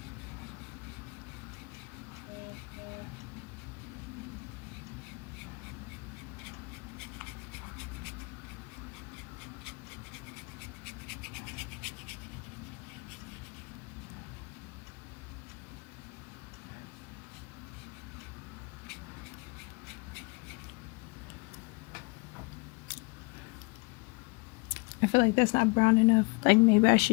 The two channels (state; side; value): quieter; right; 29.0 dB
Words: I feel like that's not brown enough. Like, maybe I